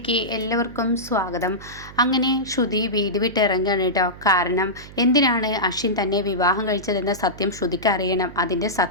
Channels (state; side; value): noise; right; hum, 17 dB below the sound